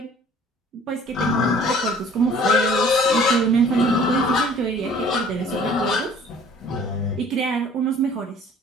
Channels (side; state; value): both; normal; correlation 0.52